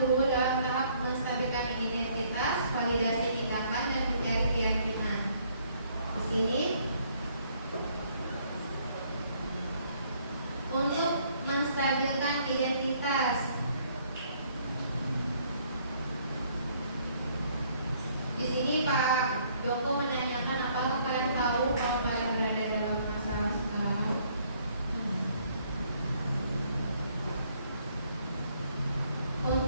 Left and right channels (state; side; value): inverted; both; correlation -0.65